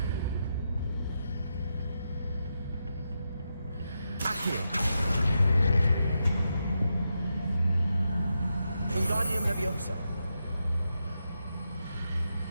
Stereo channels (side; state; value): both; inverted; correlation -0.85